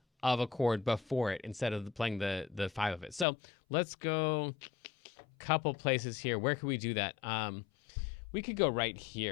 of a chord before it instead of playing the 5 of it. So let's go a couple places here. Where could we do that? We could go right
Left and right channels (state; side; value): drops out; right; at 3.2 s